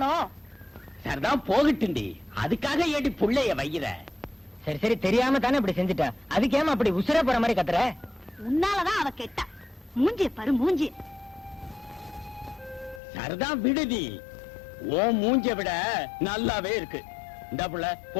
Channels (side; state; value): right; drops out; at 13.0 s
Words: சரிதான் போகட்டுண்டி, அதுக்காக ஏடி புள்ளைய வைக்கிற? சரி சரி தெரியாம தானே இப்படி செஞ்சுட்டா. அதுக்கு ஏமா அப்படி உசுர போற மாதிரி கத்துற? உன்னாலதான் அவ கெட்டா. மூஞ்சி பாரு மூஞ்சி. சரிதான் விடுதி, ஓ மூஞ்ச விட நல்லாவே இருக்கு. இந்த புள்ள